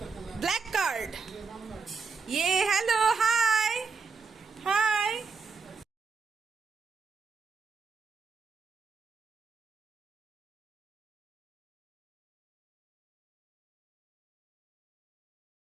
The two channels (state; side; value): quieter; left; 4.9 dB